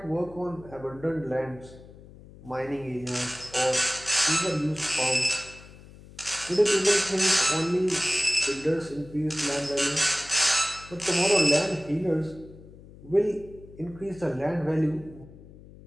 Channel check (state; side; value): noise; left; hum, 20 dB below the sound